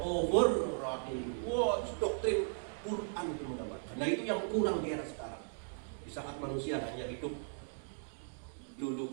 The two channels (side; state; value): left; silent; digital silence